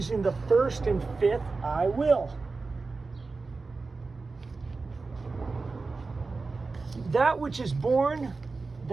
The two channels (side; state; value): left; quieter; 4.0 dB